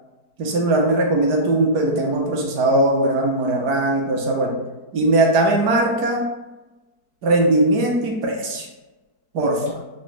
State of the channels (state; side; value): late; left; 4.6 ms